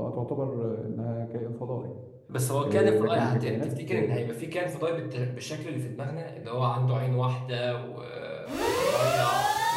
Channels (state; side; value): identical; both; correlation 1.00